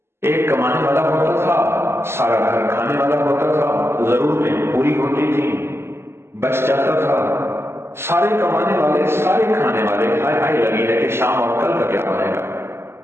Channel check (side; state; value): left; late; 0.12 ms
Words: ایک کمانے والا ہوتا تھا، سارا گھر کھانے والا ہوتا تھا، ضرورتیں پوری ہوتی تھیں، بچ جاتا تھا۔ سارے کمانے والے، سارے کھانے والے ہائے لگی ہے کہ شام اور کل کا کیا بنے گا۔